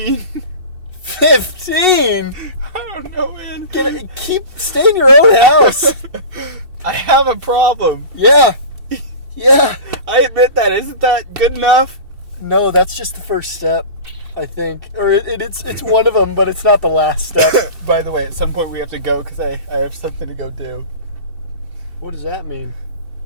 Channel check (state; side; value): late; left; 2.7 ms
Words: 15?! I don't know, man. Stay in your own house! I have a problem. Yeah. Yeah. I admit that. Isn't that good enough? No, that's just the first step, I think. Or it's one of them, but it's not the last step. By the way, at some point we have to go because I have something to go do. What does that mean?